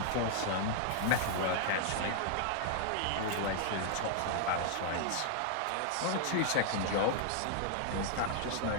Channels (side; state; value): both; different; correlation -0.01